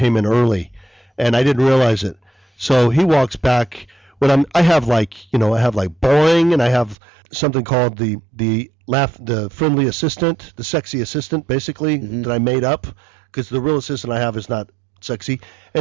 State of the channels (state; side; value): drops out; left; at 7.0 s